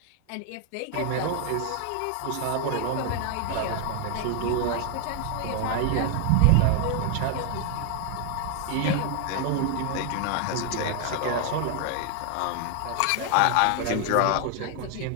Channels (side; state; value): both; different; correlation 0.00